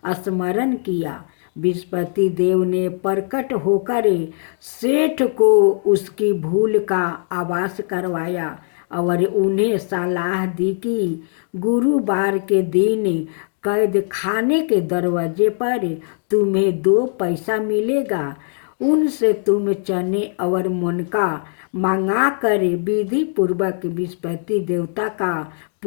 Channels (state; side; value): silent; right; digital silence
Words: स्मरण किया। बृहस्पति देव ने प्रकट होकर सेठ को उसकी भूल का आभास करवाया और उन्हें सलाह दी कि गुरुवार के दिन कैद खाने के दरवाजे पर तुम्हें 2 पैसा मिलेगा। उनसे तुम चने और मुनका मंगा कर विधि पूर्वक बृहस्पति देवता का